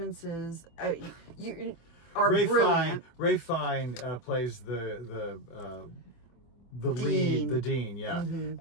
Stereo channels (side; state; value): right; late; 24 ms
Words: are brilliant. Ray Fine plays the dean. lead, the dean,